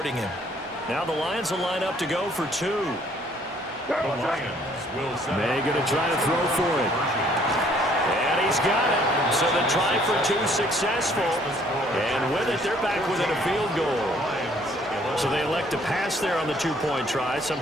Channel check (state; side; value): normal; both; correlation 0.62